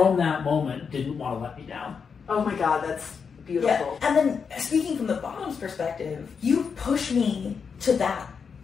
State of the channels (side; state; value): right; quieter; 6.0 dB